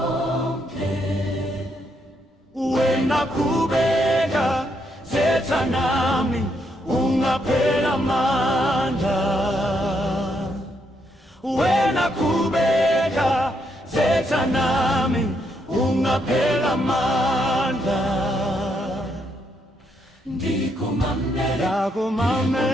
Wena kubeka zetha nami ungaphela amandla. Wena kubeka zetha nami ungaphela amandla. Ndikumamele,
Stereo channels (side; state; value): both; normal; correlation 0.76